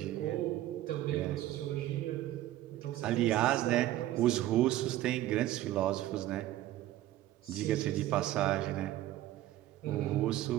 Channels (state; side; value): quieter; left; 14.5 dB